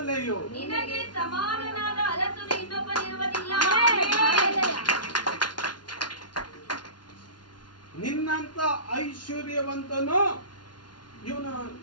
ನಿನಗೆ ಸಮಾನನಾದ ಅರಸನು ಇನ್ನೊಬ್ಬನಿರುವುದಿಲ್ಲ. ನಿನ್ನಂತ ಐಶ್ವರ್ಯವಂತನು ಇವನು.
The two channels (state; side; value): late; right; 0.70 ms